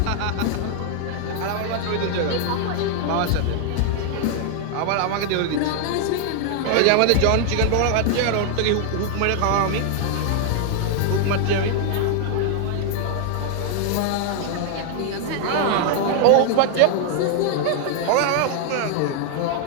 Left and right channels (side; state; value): both; different; correlation 0.00